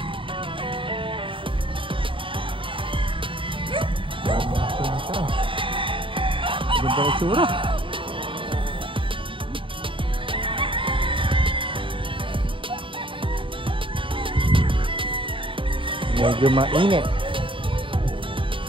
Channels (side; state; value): left; late; 0.25 ms